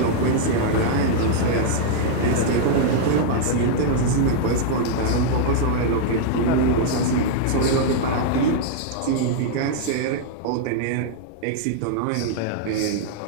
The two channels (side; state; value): both; different; correlation -0.01